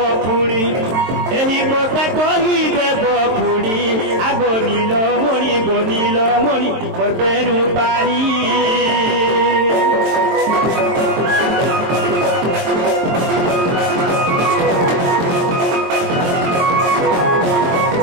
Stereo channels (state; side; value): late; left; 22 ms